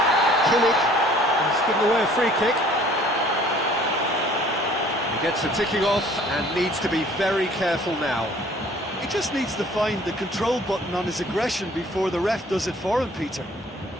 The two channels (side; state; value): both; normal; correlation 0.54